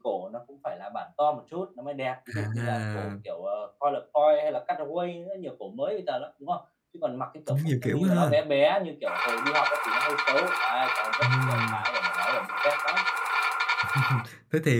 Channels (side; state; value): both; identical; correlation 1.00